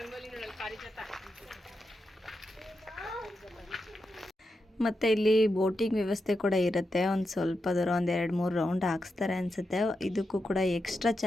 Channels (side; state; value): both; normal; correlation 0.87